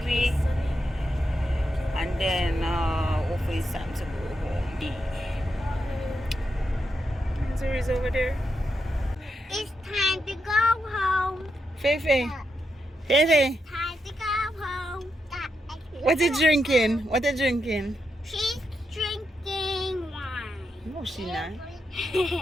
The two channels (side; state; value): both; normal; correlation 0.84